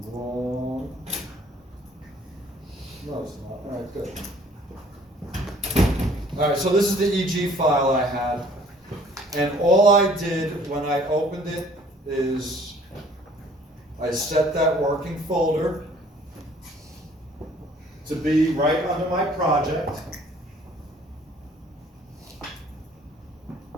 wrong. No, it's not. All right, good. All right, so this is the EG file I had, and all I did when I opened it is I set that working folder to be right under my project.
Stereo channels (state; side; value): normal; both; correlation 0.56